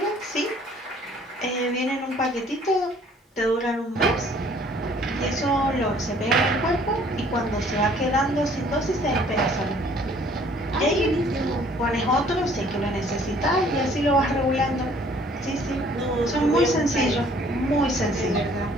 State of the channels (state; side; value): normal; both; correlation 0.57